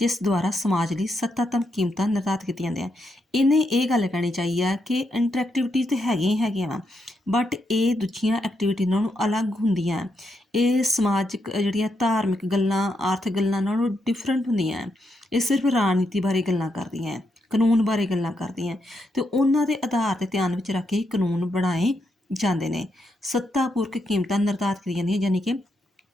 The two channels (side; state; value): both; normal; correlation 0.81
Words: ਦੁਆਰਾ ਸਮਾਜ ਲਈ ਸੱਤਾਤਮ ਕੀਮਤਾਂ ਨਿਰਧਾਰਿਤ ਕੀਤੀਆਂ ਜਾਂਦੀਆਂ। ਇਹਨੇ ਇਹ ਗੱਲ ਕਹਿਣੀ ਚਾਹੀਦੀ ਆ ਕਿ ਇੰਟਰੈਕਟੀਵਿਟੀ ਤਾਂ ਹੈਗੀਆਂ ਹੀ ਹੈਗੀਆਂ ਵਾ, ਬਟ ਇਹ ਦੂਜੀਆਂ ਐਕਟੀਵਿਟੀ ਨਾਲੋਂ ਅਲੱਗ ਹੁੰਦੀਆਂ। ਇਹ ਸਮਾਜਿਕ ਜਿਹੜੀਆਂ ਧਾਰਮਿਕ ਗੱਲਾਂ, ਆਰਥਿਕ ਗੱਲਾਂ ਨਾਲੋਂ ਡਿਫਰੈਂਟ ਹੁੰਦੀਆਂ। ਇਹ ਸਿਰਫ ਰਾਜਨੀਤੀ ਬਾਰੇ ਗੱਲਾਂ ਕਰਦੀਆਂ, ਕਾਨੂੰਨ ਬਾਰੇ ਗੱਲਾਂ ਕਰਦੀਆਂ, ਅਤੇ ਉਹਨਾਂ ਦੇ ਆਧਾਰ 'ਤੇ ਧਿਆਨ ਵਿੱਚ ਰੱਖ ਕੇ ਕਾਨੂੰਨ ਬਣਾਏ ਜਾਂਦੇ ਨੇ। ਸੱਤਾਪੂਰਕ ਕੀਮਤਾਂ ਨਿਰਧਾਰਿਤ ਕੀਤੀਆਂ ਜਾਂਦੀਆਂ, ਯਾਨੀ ਕਿ